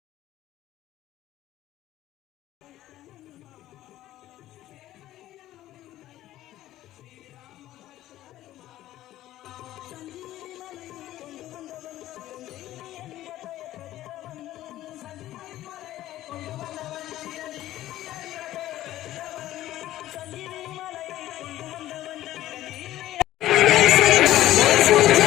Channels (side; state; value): right; quieter; 14.3 dB